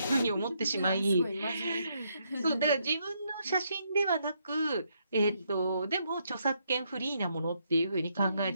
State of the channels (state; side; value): inverted; both; correlation -0.75